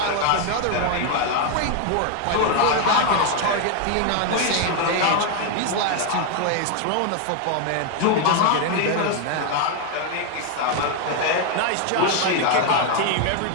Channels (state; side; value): different; both; correlation 0.01